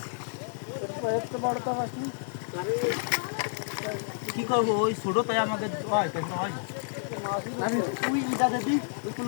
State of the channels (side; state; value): right; silent; digital silence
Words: এত বড় তো আসনি কি করবো ওই ছোট তাই আমাদের হয় কেন হয় আমি তুই ইটা দিবি ওই